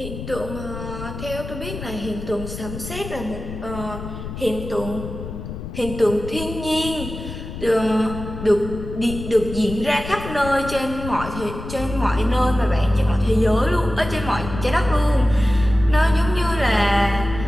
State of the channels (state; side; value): noise; left; rumble, 9 dB below the sound